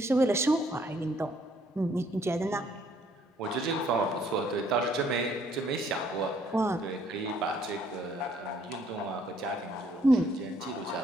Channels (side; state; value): both; normal; correlation 0.65